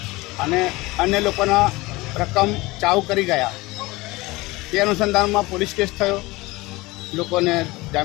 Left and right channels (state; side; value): quieter; right; 21.4 dB